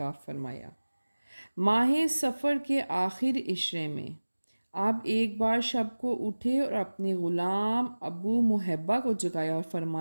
فرمایا۔ ماہ سفر کے آخر عشرے میں آپ ایک بار شب کو اٹھے اور اپنے غلام ابو محبہ کو جگایا اور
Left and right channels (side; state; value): both; inverted; correlation -1.00